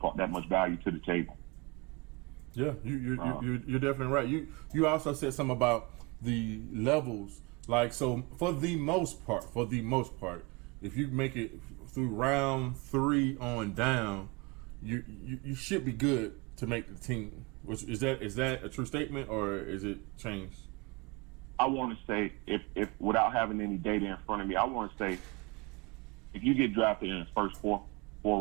that much value to the table. Yeah, you're definitely right. You also said something about the levels. Like, so for the most part, if you make it through round 3 on down, you should be good to make the team. Which is that a true statement or is it changed? I want to say, if without having any data in front of me, I want to say if you get drafted in the first four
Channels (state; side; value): quieter; left; 27.1 dB